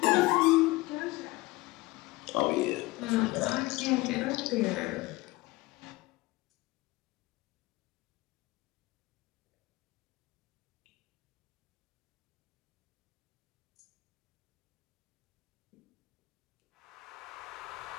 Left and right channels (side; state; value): right; quieter; 21.0 dB